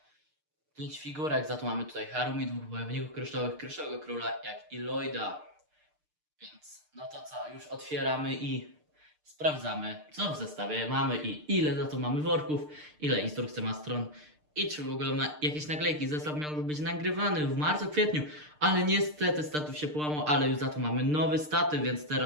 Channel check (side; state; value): left; late; 6.6 ms